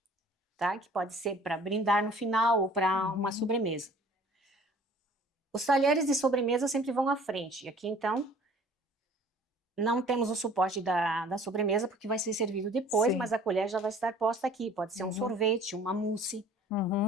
tá? Que pode ser para brindar no final ou para uma sobremesa. Os talheres de sobremesa sempre vão à frente. Aqui, então, não temos o suporte da sobremesa, porque vai ser servido depois, Sim. mas a colher já vai estar posta aqui. Pode ser um sorvete, uma mousse,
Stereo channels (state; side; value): normal; both; correlation 0.51